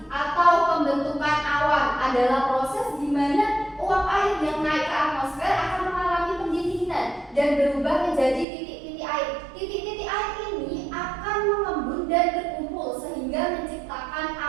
atau pembentukan awan adalah proses di mana uap air yang naik ke atmosfer akan mengalami pendinginan dan berubah menjadi titik-titik air. Titik-titik air ini akan mengembun dan berkumpul sehingga menciptakan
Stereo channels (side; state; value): left; drops out; at 8.5 s